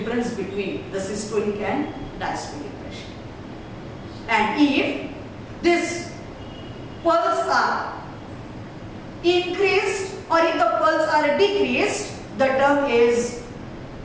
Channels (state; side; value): identical; both; correlation 1.00